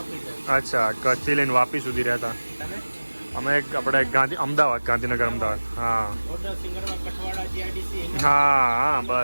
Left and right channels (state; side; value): inverted; both; correlation -1.00